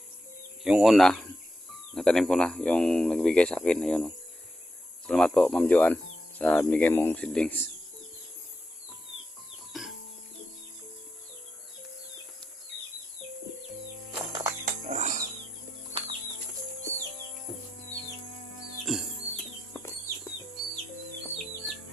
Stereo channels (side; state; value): both; normal; correlation 0.86